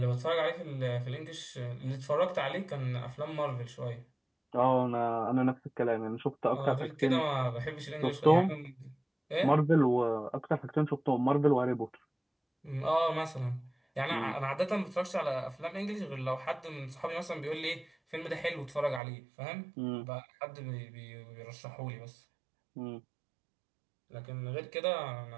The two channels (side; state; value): left; drops out; at 19.0 s